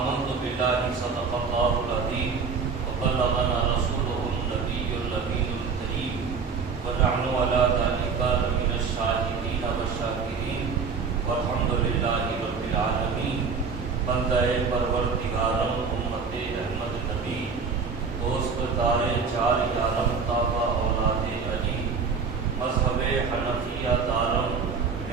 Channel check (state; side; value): quieter; left; 5.3 dB